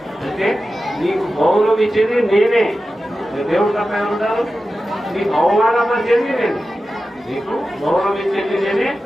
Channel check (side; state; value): both; normal; correlation 0.93